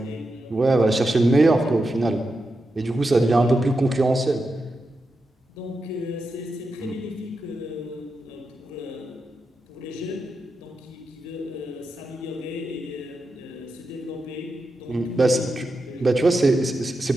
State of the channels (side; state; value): both; normal; correlation 0.88